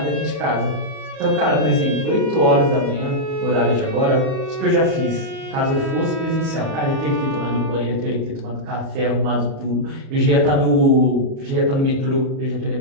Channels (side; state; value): left; late; 37 ms